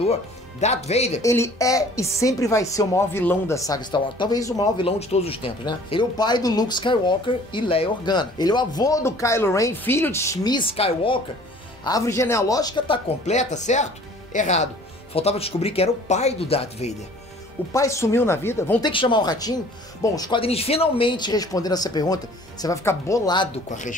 Darth Vader. Ele é e sempre vai ser o maior vilão da saga Star Wars. Talvez o maior vilão de todos os tempos, né? Ele é o pai do Luke Skywalker e Leia Organa. Ele é o avô do Kylo Ren, filho de Shmi Skywalker. A árvore genealógica tá completa, certo? Errado. Faltava descobrir que era o pai do Darth Vader. O pai sumiu na vida? Vão ter que chamar o ratinho? Bom, os quadrinhos finalmente respondendo essa pergunta. Você vai ficar bolado com a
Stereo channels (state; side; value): normal; both; correlation 0.51